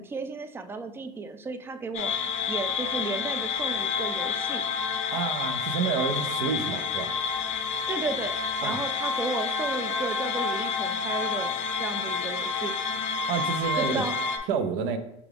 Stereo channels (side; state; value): both; normal; correlation 0.29